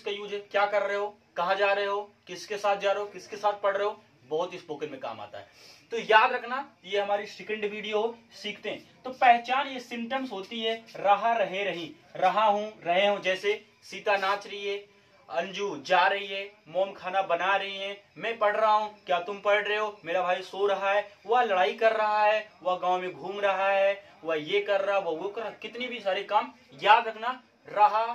यूज है, क्या कर रहे हो, कहां जा रहे हो, किसके साथ जा रहे हो, किसके साथ पढ़ रहे हो, बहुत स्पोकन में काम आता है। तो याद रखना, ये हमारी सेकंड वीडियो सीखते हैं। तो पहचान ये सिम्टम्स होती है, रहा, रहे, रही, रहा हूं, रहे हूं। जैसे सीता नाच रही है, अंजू जा रही है, मोम खाना बना रही है, मैं पढ़ रहा हूं, क्या तुम पढ़ रहे हो, मेरा भाई सो रहा है, वह लड़ाई कर रहा है, वह गांव में घूम रहा है, वह ये कर रहा, वह वो कर रहा, कितनी भी सारे काम। याद रखना, रहा,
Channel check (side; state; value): both; identical; correlation 1.00